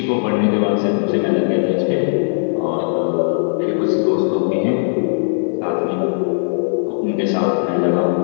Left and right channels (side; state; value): right; silent; 64 dB below the other